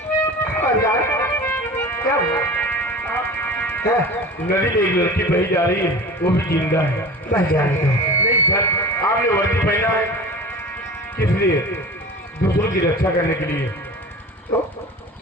क्या नदी में एक लड़की बही जा रही है, वो भी जिंदा है। बस जाने दो। नहीं सर, आपने वर्दी पहना है किस लिए? दूसरों की रक्षा करने के लिए।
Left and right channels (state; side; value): normal; both; correlation 0.36